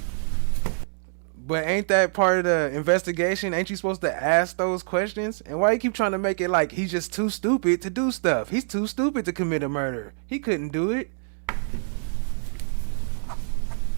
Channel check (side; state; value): left; silent; digital silence